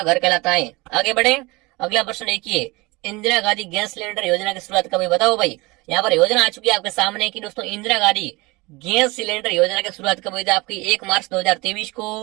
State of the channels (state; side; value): quieter; left; 23.9 dB